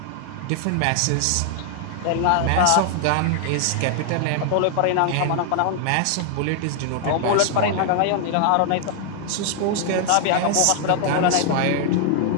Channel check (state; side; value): different; both; correlation 0.00